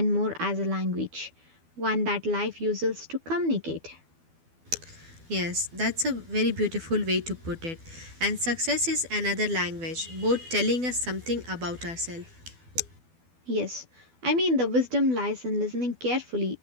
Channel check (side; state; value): left; late; 12 ms